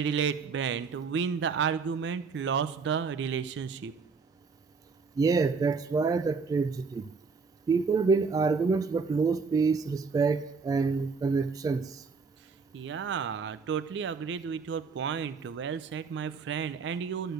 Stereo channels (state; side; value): quieter; left; 4.9 dB